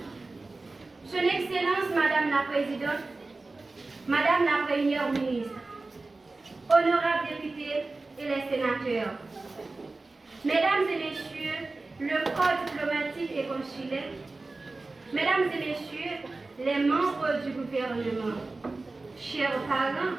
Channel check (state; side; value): quieter; left; 3.4 dB